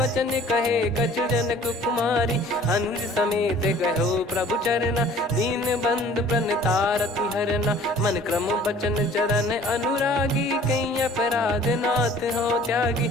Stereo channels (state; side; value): normal; both; correlation 0.51